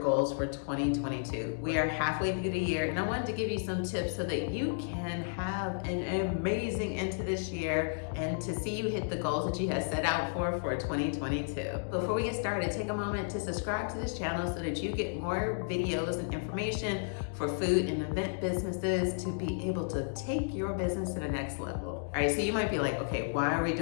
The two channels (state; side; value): silent; right; digital silence